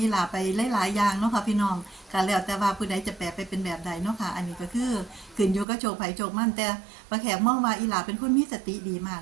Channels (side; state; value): left; drops out; at 5.7 s